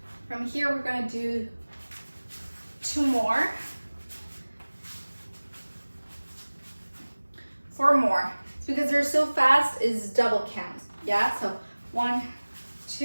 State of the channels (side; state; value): both; inverted; correlation -1.00